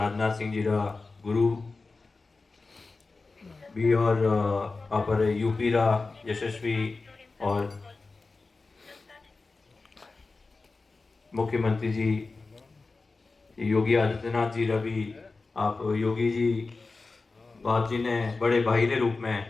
सिंह जी रा गुरु भी और अपर यूपी रा यशस्वी और मुख्यमंत्री जी योगी आदित्यनाथ जी रवि आप योगी जी बाप जी ने बड़े भाई के रूप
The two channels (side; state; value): right; quieter; 3.8 dB